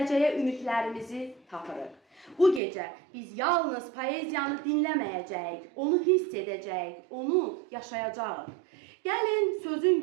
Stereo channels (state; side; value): drops out; left; at 2.6 s